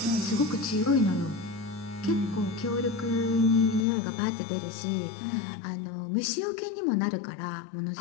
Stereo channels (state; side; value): drops out; right; at 3.9 s